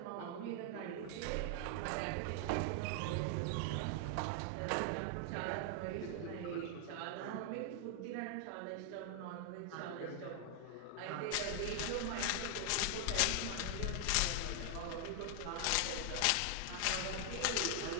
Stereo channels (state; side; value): different; both; correlation 0.00